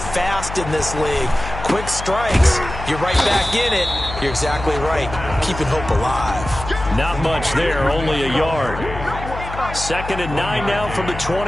in this league. Quick strikes, you're right back in it. You're exactly right. Keeping hope alive. Not much there, only a yard. 2nd and 9 now from the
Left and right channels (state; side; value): noise; left; hum, 9 dB below the sound